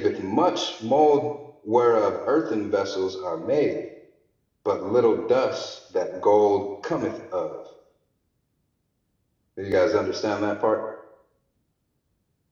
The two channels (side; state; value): both; identical; correlation 1.00